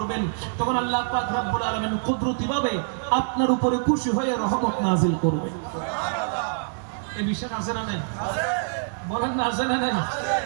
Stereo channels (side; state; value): left; silent; 62 dB below the other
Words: তখন আল্লাহ পাক রব্বুল আলামিন কুদরতিভাবে আপনার উপরে খুশি হয়ে রহমত নাযিল করবে। এই বিষয় আছে না নাই? বলেন না, আছে না নাই?